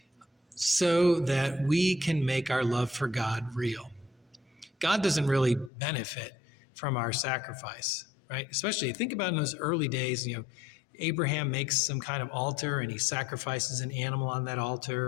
so that we can make our love for God real. God doesn't really benefit from our sacrifice, right? Especially think about in those early days, Abraham makes some kind of altar and he sacrifices an animal on that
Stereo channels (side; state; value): right; drops out; at 5.7 s